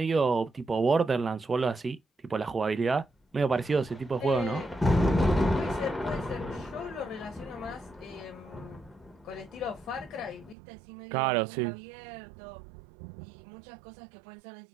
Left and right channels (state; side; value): drops out; left; at 10.6 s